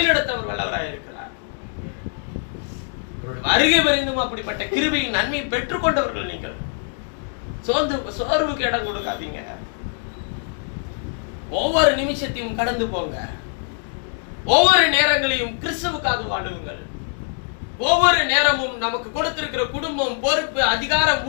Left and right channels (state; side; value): silent; right; 56 dB below the other